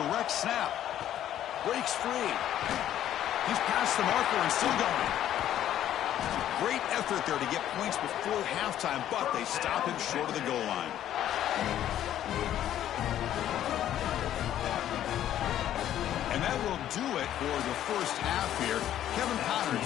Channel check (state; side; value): quieter; right; 11.6 dB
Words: snap. Breaks free. He's past the marker and still going. Great effort there to get points before halftime, but they stop him short of the goal line. And that will do it for the first half here. Kevin